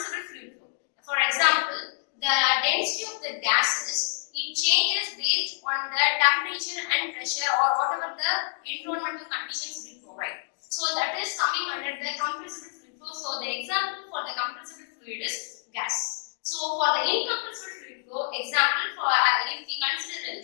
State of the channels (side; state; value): right; silent; digital silence